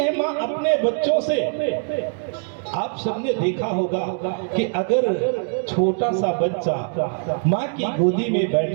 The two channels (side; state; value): left; silent; 64 dB below the other